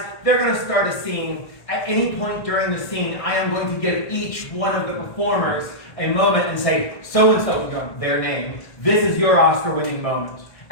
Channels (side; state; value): right; late; 1.6 ms